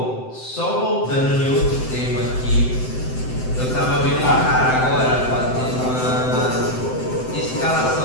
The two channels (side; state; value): right; late; 7.8 ms